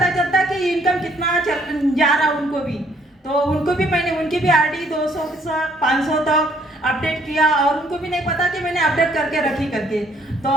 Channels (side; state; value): both; normal; correlation 0.65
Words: चलता कि इनकम कितना जा रहा उनको भी। तो उनको भी मैंने उनकी भी आरडी 200 से 500 तक अपडेट किया, और उनको भी नहीं पता कि मैंने अपडेट करके रखी करके।